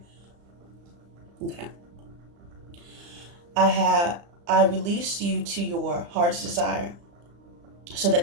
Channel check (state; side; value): late; left; 35 ms